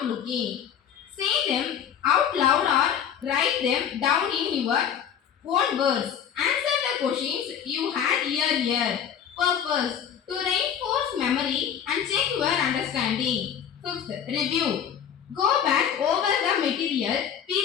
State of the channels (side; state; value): right; quieter; 8.6 dB